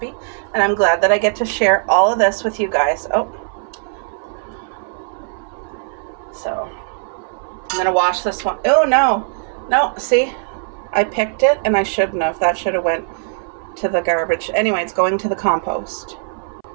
and I'm glad that I get to share all of this with you guys. Oh, so I'm gonna wash this one. Oh no, see, I picked it and I shouldn't have. That should have went to the garbage. Anyway, it's going to the compost.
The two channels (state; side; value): silent; left; 62 dB below the other